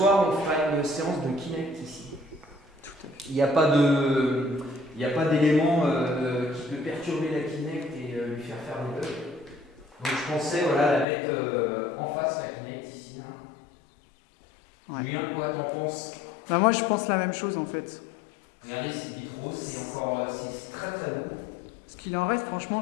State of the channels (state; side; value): drops out; right; at 11.1 s